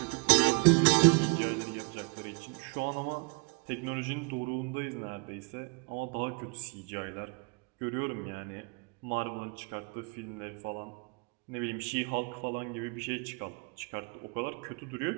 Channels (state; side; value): quieter; left; 32.5 dB